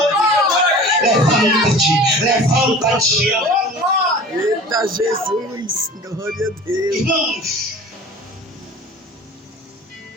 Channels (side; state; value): both; normal; correlation 0.40